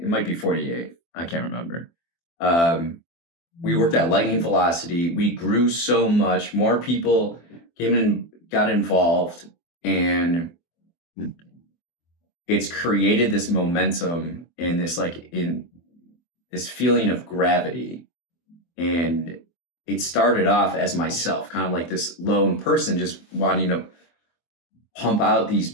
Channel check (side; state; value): right; late; 24 ms